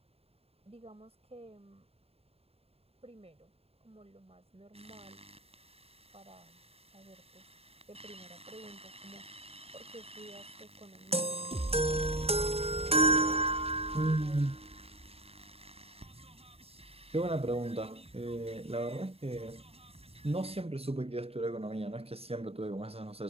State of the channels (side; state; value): left; late; 0.29 ms